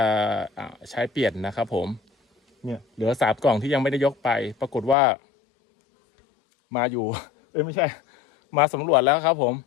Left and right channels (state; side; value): drops out; right; at 5.0 s